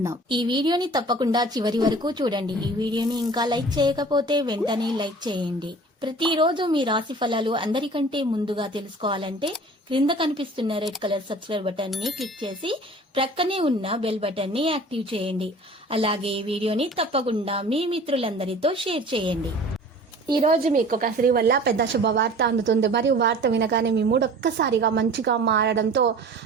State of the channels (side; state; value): both; normal; correlation 0.45